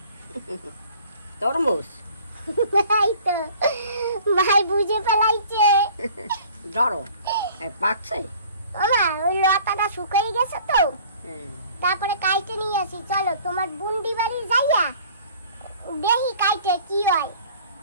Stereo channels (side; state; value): both; inverted; correlation -0.51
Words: তরমুজ। এই তো ভাই বুঝে ফেলাইছে। ধরো, পাকছে। ওমা, ওই লতাটা শুকিয়ে গেছে তো, তারপরে কাইটে নিয়ে আসি। চলো তোমার বুন্ডি বাড়ি যাইয়া দেখি কাইটে কি হয়,